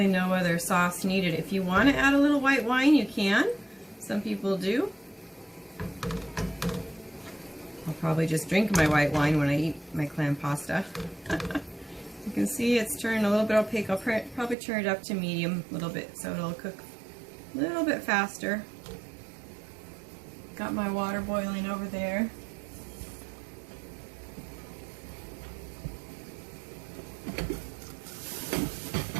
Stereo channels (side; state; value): left; drops out; at 14.6 s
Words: no other sauce needed. If you want to add a little white wine, you can. Some people do. I'll probably just drink my white wine when I eat my clam pasta. You can see it's turned a little bit opaque. I'll probably turn it up to medium a little bit so it'll cook a little bit faster. Got my water boiling over there.